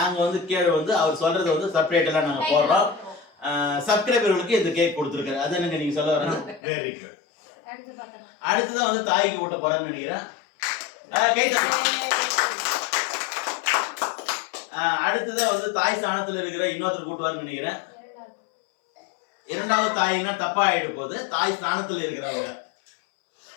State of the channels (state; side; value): drops out; right; at 6.6 s